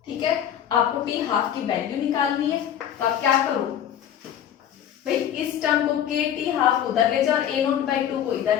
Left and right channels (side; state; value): right; quieter; 10.0 dB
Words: ठीक है, आपको टी हाफ की वैल्यू निकालनी है, तो आप क्या करो भाई, इस टर्म को के टी हाफ उधर ले जाओ और ए नोट बाई टू को